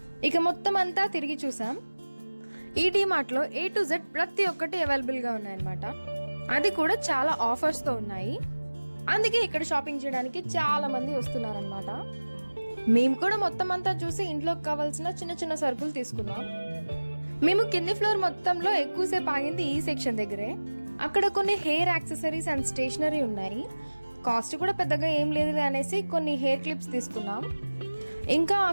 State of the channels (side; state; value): both; inverted; correlation -1.00